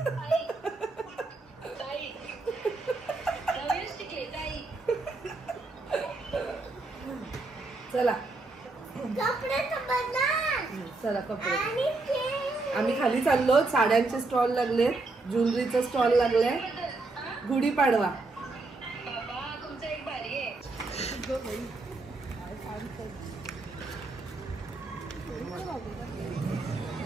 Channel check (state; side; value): quieter; left; 3.4 dB